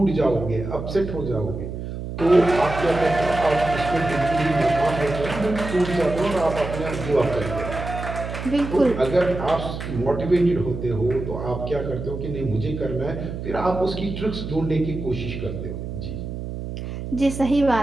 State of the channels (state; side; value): noise; right; hum, 7 dB below the sound